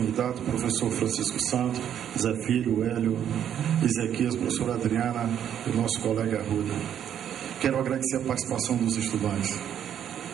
professor Francisco Santos, Zé Filho, Hélio, Ezequias, professora Adriana e o nosso colega Arruda. Quero agradecer a participação dos estudantes,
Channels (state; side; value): quieter; left; 9.5 dB